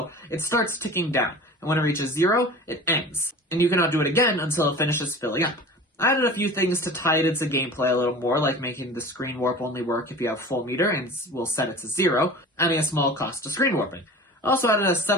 it starts ticking down, and when it reaches 0, it ends, and you cannot do it again until it finishes filling up. I added a few things to tie it into gameplay a little more, like making the screen warp only work if you have full meter, and we'll set it to 0, adding a small cost to screen warping. I also added a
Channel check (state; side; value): normal; both; correlation 0.39